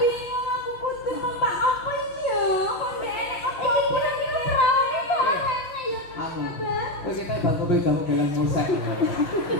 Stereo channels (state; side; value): late; right; 5.7 ms